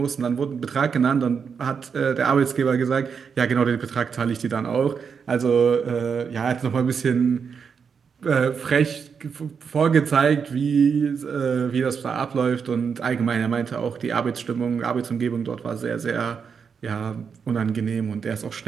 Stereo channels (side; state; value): left; quieter; 6.3 dB